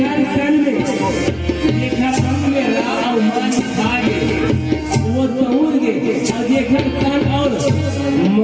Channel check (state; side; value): identical; both; correlation 1.00